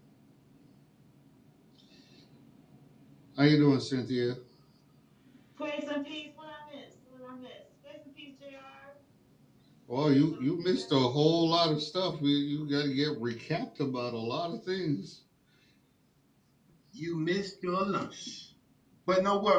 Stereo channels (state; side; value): identical; both; correlation 1.00